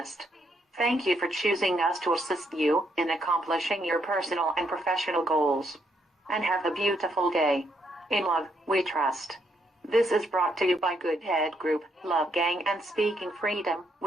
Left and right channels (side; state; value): both; normal; correlation 0.75